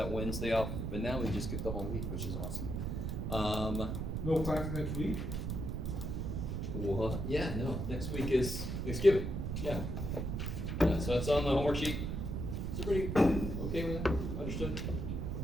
Wednesday off, but now we just get the whole week, which is awesome. No class next week? What? Yeah, no. Next week is Thanksgiving. Yeah. So that's on the homework sheet. Is everybody okay with that? Understood?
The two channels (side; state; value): right; noise; rumble, 2 dB below the sound